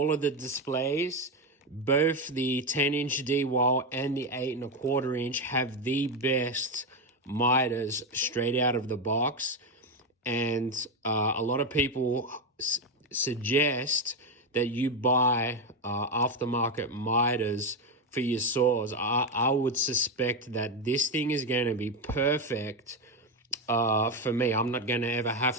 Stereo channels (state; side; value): normal; both; correlation 0.10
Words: of the displays, both the 10-inch Dewalt and the 8 1/4 inch have the best miters straight out of the box. And a lot of people suggest that you buy aftermarket miters for your saws. I would suspect that this thing is going to be perfect for me. I'm not going to ever